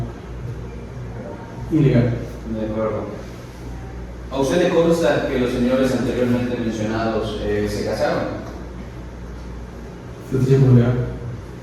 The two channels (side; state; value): both; identical; correlation 1.00